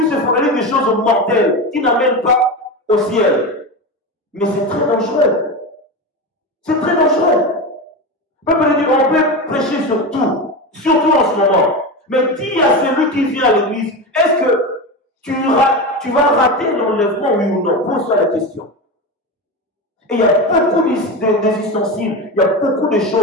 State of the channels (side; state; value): both; normal; correlation 0.21